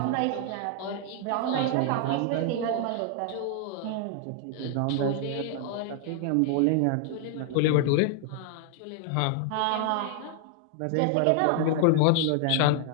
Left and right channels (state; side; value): different; both; correlation 0.00